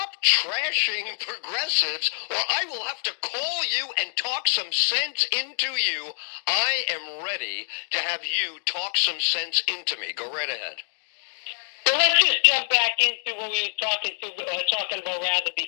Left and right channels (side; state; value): right; silent; digital silence